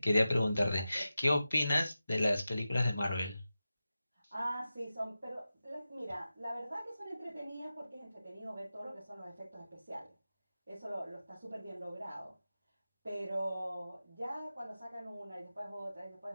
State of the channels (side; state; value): both; inverted; correlation -0.93